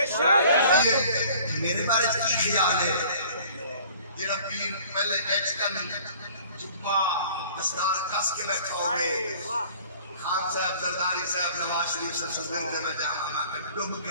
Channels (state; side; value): inverted; both; correlation -0.50